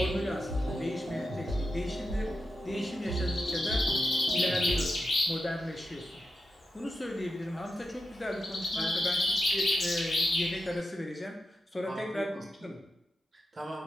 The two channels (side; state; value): both; normal; correlation 0.89